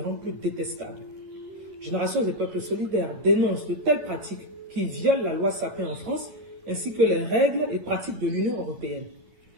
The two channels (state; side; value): late; left; 11 ms